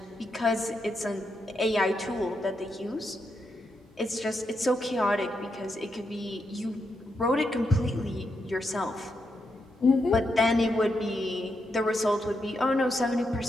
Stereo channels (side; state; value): both; normal; correlation 0.83